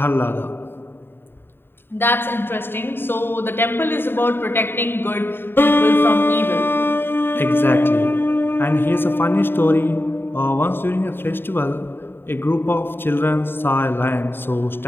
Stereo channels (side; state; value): right; late; 0.10 ms